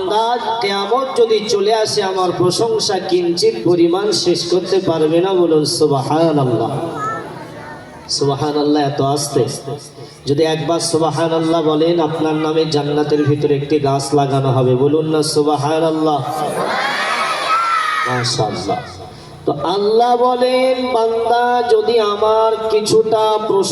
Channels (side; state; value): both; identical; correlation 1.00